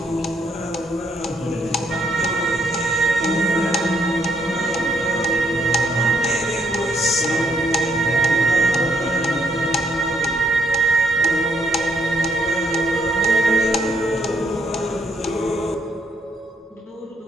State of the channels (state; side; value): normal; both; correlation 0.72